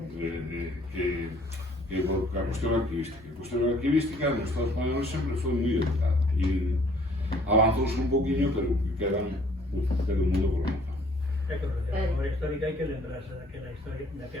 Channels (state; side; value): normal; both; correlation 0.58